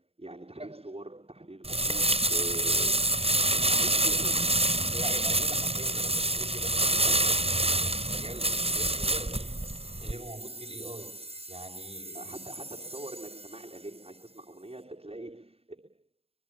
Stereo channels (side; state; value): left; late; 0.29 ms